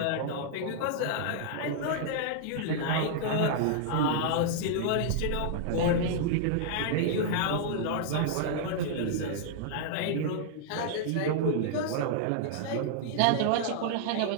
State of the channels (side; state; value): both; different; correlation -0.01